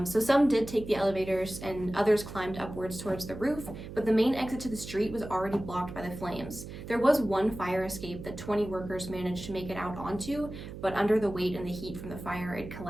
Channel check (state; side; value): noise; right; hum, 11 dB below the sound